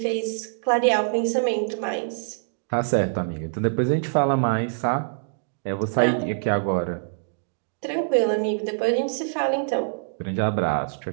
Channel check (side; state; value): left; silent; digital silence